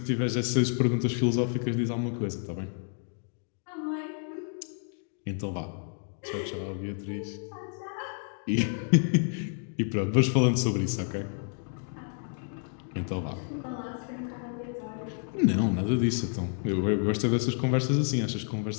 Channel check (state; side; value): silent; right; 58 dB below the other